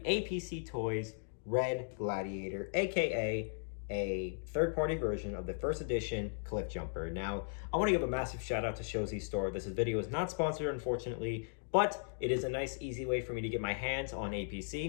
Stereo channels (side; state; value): right; silent; digital silence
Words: Toys Red Gladiator, aka a third-party version of the first edition Cliffjumper. Now, I want to give a massive shout out to Shoutout Store. This video is not sponsored, unfortunately, but it is a nice, easy way for me to get my hands on